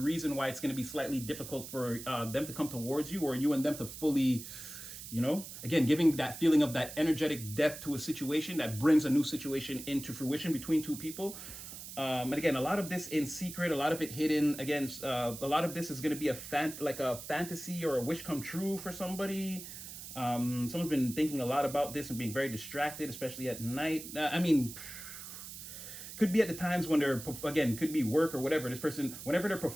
why it's going to be slightly difficult for them to come towards you, or you and them to fully, again, giving that feeling of that energetic depth to a situation that brings a new situation into fruition between two people. And again, a lot of this in secret, a lot of it hidden. Again, a lot of this is going to be a fantasy or a wish come true for somebody. Someone's been thinking a lot about this and being very distracted, especially at night. Could be at the times when could be work or whatever. This person, whenever they're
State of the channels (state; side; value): noise; right; hiss, 11 dB below the sound